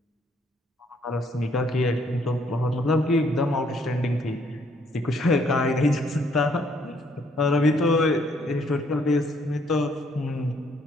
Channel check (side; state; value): both; normal; correlation 0.67